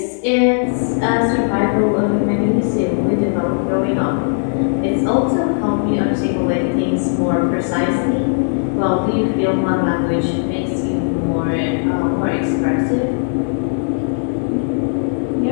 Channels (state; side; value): silent; right; digital silence